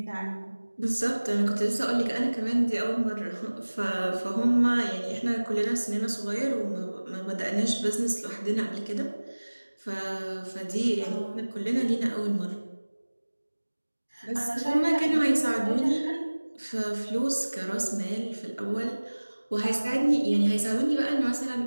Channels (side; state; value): both; inverted; correlation -1.00